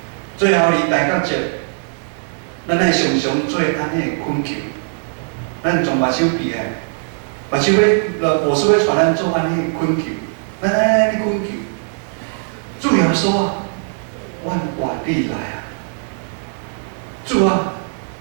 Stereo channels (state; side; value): silent; left; digital silence